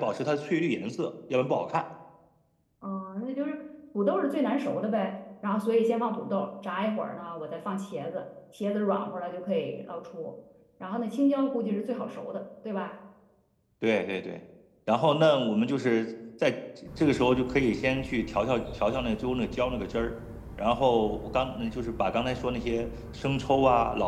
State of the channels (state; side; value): identical; both; correlation 1.00